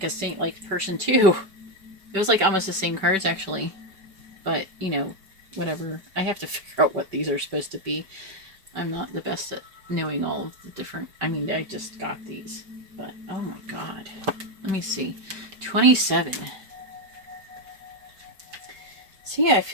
a saint-like person too. It was like almost the same cards actually, but you know, whatever. I have to figure out what these are supposed to be. I'm not the best at knowing all of the different... I mean, I just got these. But, oh my God. Let me see. 27. So yeah, I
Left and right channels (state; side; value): late; left; 5.2 ms